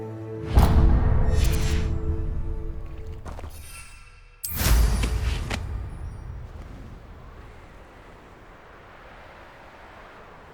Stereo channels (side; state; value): both; identical; correlation 1.00